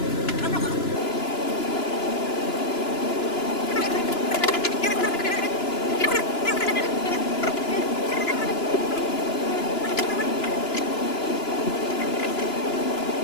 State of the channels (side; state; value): right; late; 2.9 ms